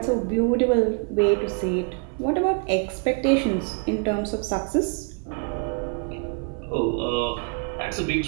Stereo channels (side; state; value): left; quieter; 34.7 dB